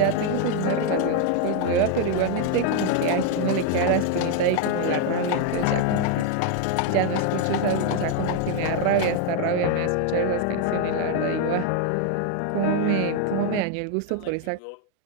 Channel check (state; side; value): different; both; correlation 0.01